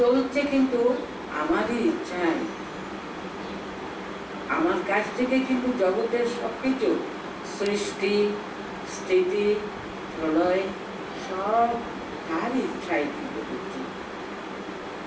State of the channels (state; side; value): identical; both; correlation 1.00